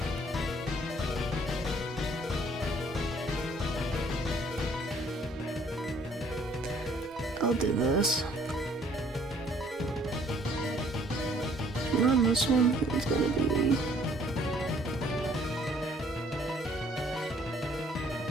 I'll do this. And on this one, it's gonna be...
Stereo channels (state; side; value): normal; both; correlation 0.60